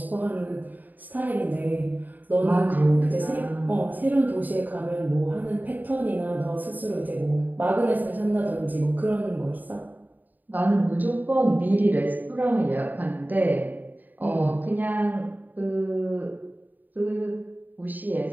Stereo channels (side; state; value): left; late; 0.085 ms